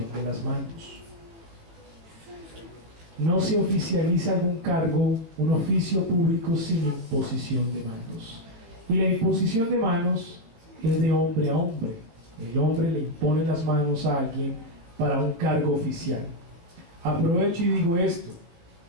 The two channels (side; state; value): left; late; 18 ms